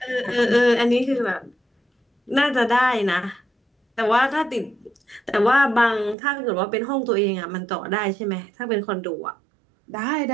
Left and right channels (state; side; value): drops out; left; at 6.2 s